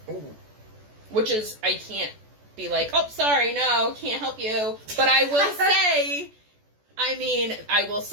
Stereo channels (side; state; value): left; late; 14 ms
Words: Ooh. Which is, I can't be like, oh, sorry, no, can't help you. But I will say... I will